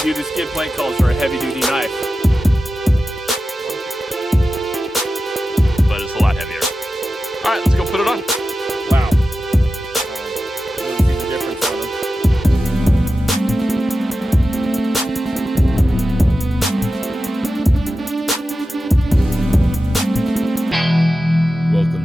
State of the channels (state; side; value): normal; both; correlation 0.93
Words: duty skid plate calls for a heavy duty knife. But it's a lot heavier. Alright, let's go put it on. Wow. You can see the difference on them.